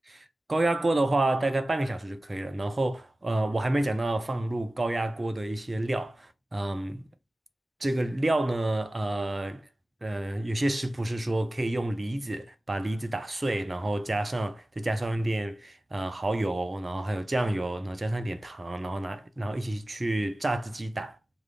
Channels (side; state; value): both; normal; correlation 0.97